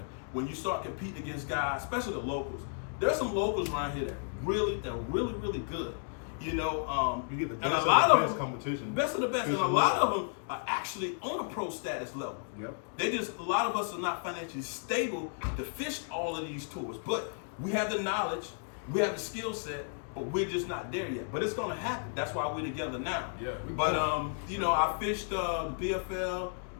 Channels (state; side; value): silent; right; digital silence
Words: When you start competing against guys, especially the locals. There's some locals around here that really good. You know, You get the and best a lot of the of best them, competition. best of the best, and a Fishing lot level. of them are actually on a pro status level. Yep. A lot of us are not financially stable to fish all of these tours, but we have the knowledge, we have the skill set, but we're just not there yet. But it's gonna happen. That's why we're together now. Yeah, we But both. you know, I fished the BFL,